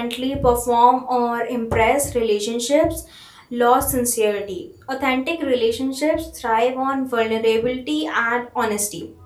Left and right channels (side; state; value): both; identical; correlation 1.00